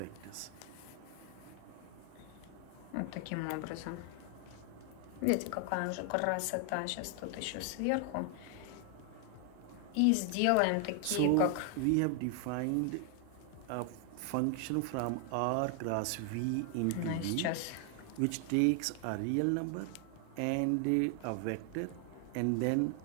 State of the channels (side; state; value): both; different; correlation 0.00